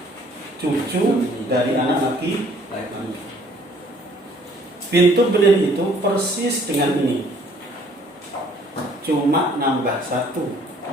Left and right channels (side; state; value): both; normal; correlation 0.59